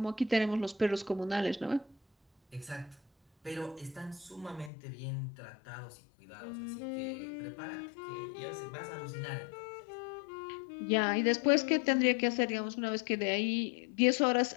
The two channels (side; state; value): right; drops out; at 4.7 s